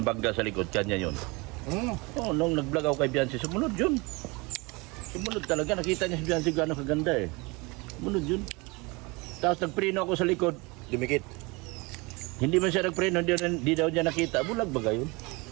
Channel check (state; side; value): quieter; left; 26.2 dB